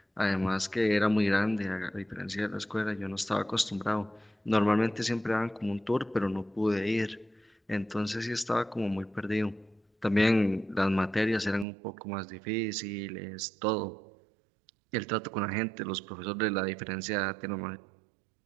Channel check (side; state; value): left; drops out; at 11.7 s